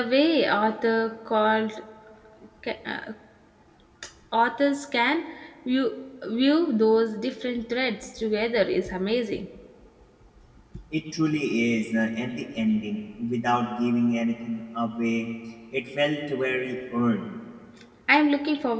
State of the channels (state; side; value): identical; both; correlation 1.00